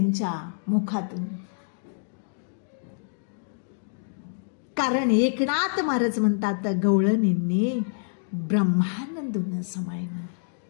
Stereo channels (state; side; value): silent; right; digital silence